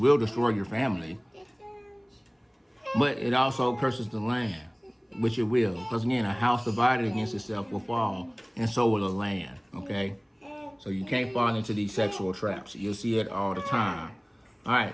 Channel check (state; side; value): identical; both; correlation 1.00